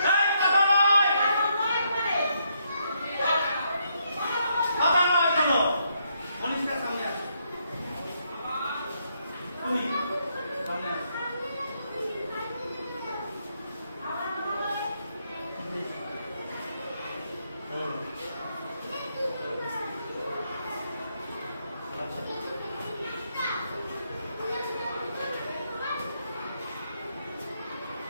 এই কথা নয়, কথা নয় কেন? মনীষটার সামনে আসো, তুমি সামনে আসো।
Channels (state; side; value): inverted; both; correlation -0.76